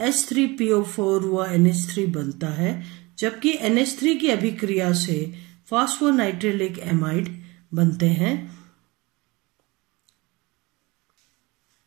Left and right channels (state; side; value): quieter; left; 24.0 dB